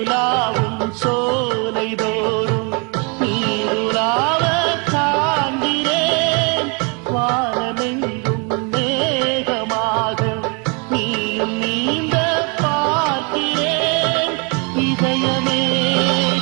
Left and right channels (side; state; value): left; quieter; 33.7 dB